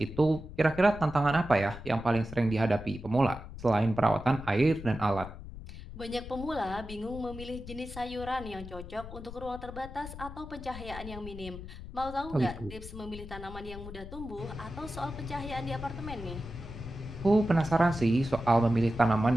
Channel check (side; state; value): left; noise; rumble, 12 dB below the sound